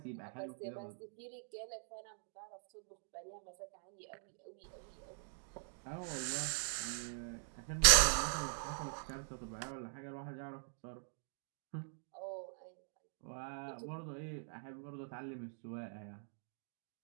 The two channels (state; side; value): silent; left; digital silence